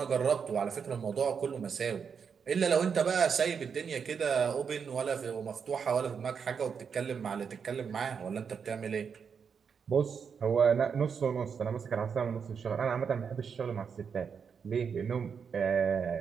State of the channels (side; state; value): left; quieter; 6.5 dB